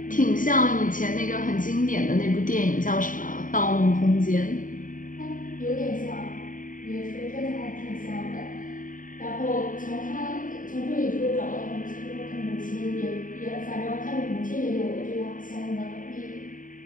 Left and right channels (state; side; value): late; right; 0.39 ms